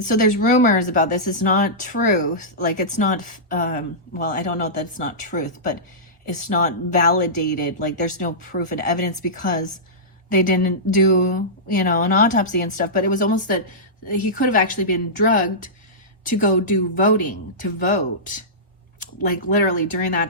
so there's rumors about this. It's not truth, like it's not well, I don't know that it's not truth, but it's not validated, like there's no proof and evidence because they didn't do, an autopsy and stuff. But it was almost that he could have actually been drugged to go do voting, to vote, like literally during that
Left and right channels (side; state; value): both; normal; correlation -0.16